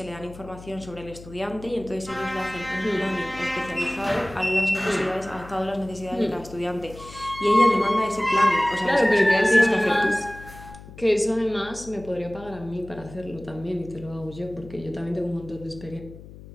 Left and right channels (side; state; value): left; noise; hum, 17 dB below the sound